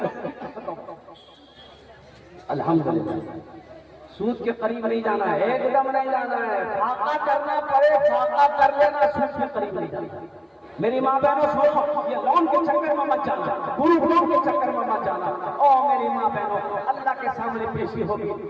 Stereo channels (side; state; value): both; identical; correlation 1.00